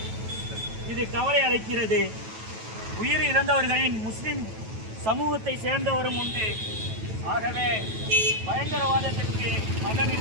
இது கவலை அளிக்கிறது. உயிரிழந்தவர்களின் முஸ்லிம் சமூகத்தை சேர்ந்தவரும் உண்டு. ஆகவே பயங்கரவாதத்திற்கு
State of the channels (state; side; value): late; left; 9.2 ms